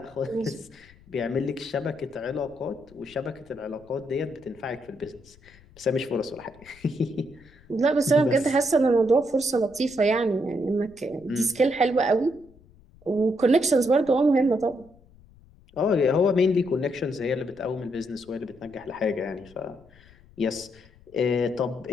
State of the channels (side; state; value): left; noise; rumble, 26 dB below the sound